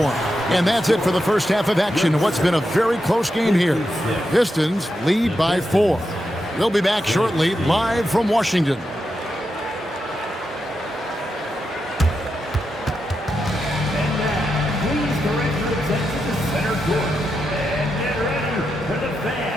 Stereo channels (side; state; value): both; normal; correlation 0.86